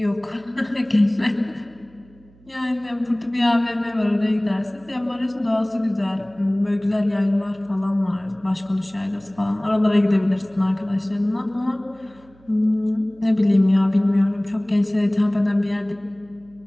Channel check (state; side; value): noise; right; hum, 28 dB below the sound